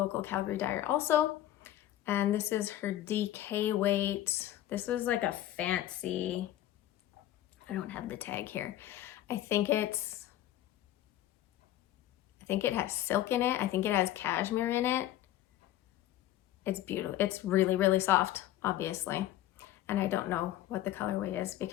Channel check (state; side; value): quieter; right; 13.4 dB